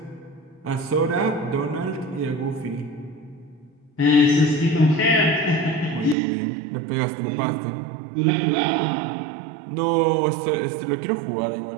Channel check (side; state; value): left; drops out; at 6.2 s